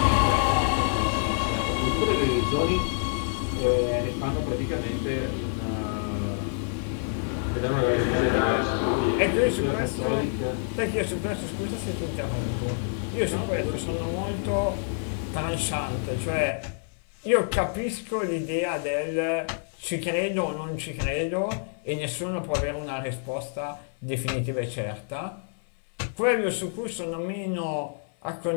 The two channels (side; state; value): right; silent; 60 dB below the other